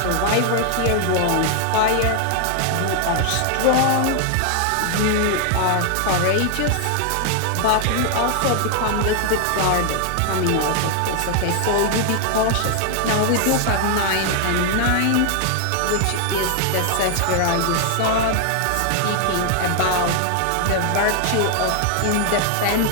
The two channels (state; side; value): different; both; correlation 0.00